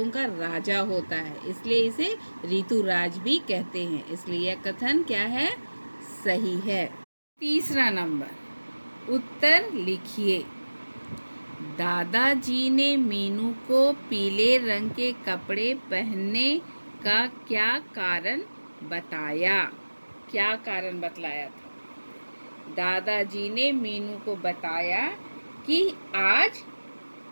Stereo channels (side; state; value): both; inverted; correlation -1.00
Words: का राजा होता है, इसलिए इसे ऋतुराज भी कहते हैं, इसलिए यह कथन क्या है? सही है। तीसरा नंबर, उत्तर लिखिए। दादाजी ने मीनू को पीले रंग के कपड़े पहनने का क्या कारण बताया? क्या कारण बतलाया था? दादाजी ने मीनू को बताया कि आज